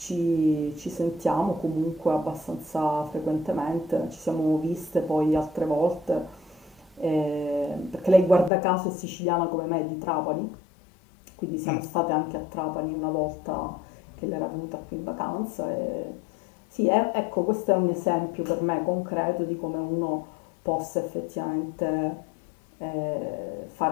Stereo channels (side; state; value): right; drops out; at 8.5 s